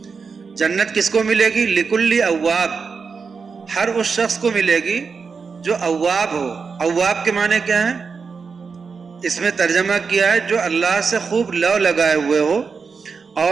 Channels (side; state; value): left; quieter; 5.3 dB